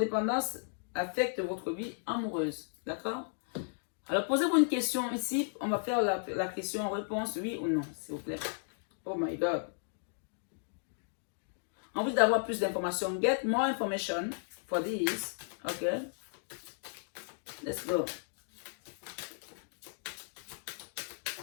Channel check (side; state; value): right; silent; digital silence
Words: affecte votre vie amoureuse. D'accord? Alors, posez-vous une question ici. On va faire la question-réponse, oui ou non, s'il vous plaît. Oh my God. On veut d'avoir plus d'informations. Get more information for this. OK? Let's go.